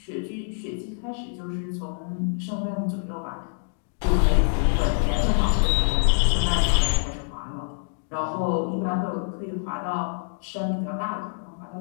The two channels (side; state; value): right; silent; digital silence